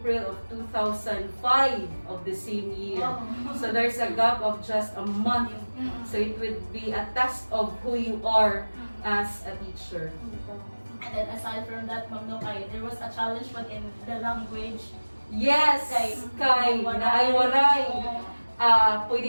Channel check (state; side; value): inverted; both; correlation -1.00